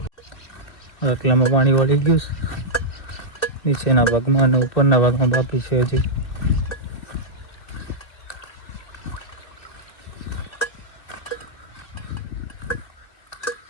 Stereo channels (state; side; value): late; right; 2.6 ms